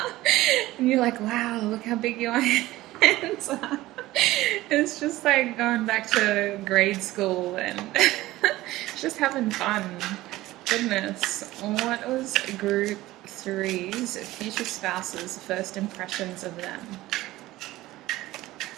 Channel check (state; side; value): quieter; left; 17.2 dB